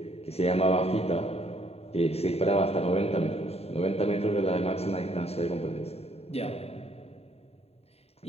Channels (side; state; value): right; late; 0.30 ms